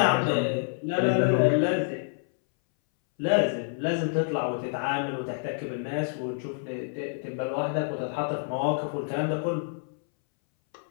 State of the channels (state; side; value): silent; right; 60 dB below the other